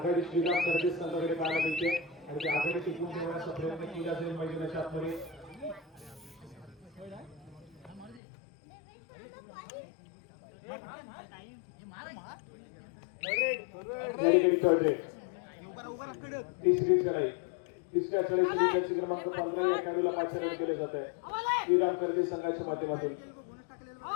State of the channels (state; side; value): drops out; right; at 8.2 s